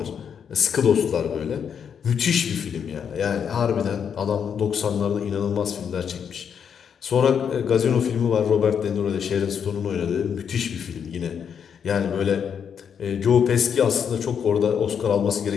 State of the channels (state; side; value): quieter; right; 7.5 dB